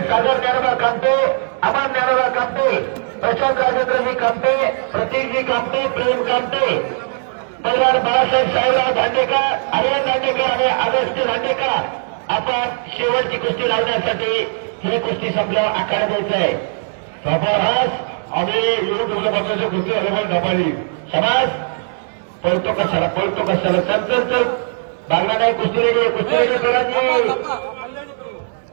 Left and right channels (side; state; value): left; silent; digital silence